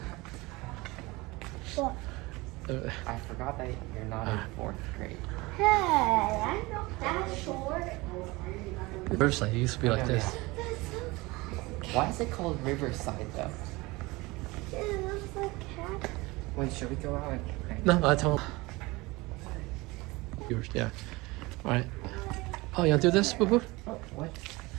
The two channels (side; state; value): left; quieter; 22.7 dB